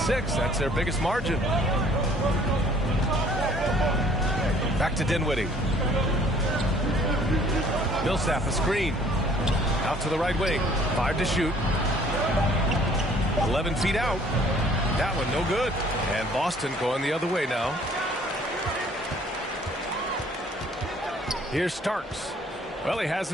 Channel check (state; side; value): normal; both; correlation 0.57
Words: That's their biggest margin. Back to Dinwiddie. Millsap a screen. Out to the right wing. 5 to shoot. 11 feet out. That one no good. And Boston going the other way now. Here's Starks. Well, he